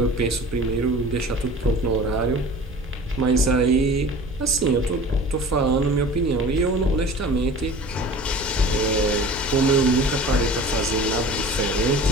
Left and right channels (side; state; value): both; normal; correlation 0.41